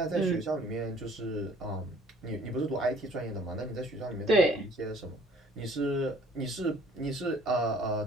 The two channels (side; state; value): both; normal; correlation 0.55